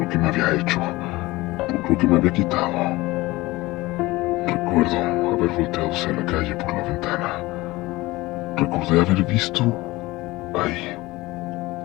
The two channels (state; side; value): quieter; right; 20.2 dB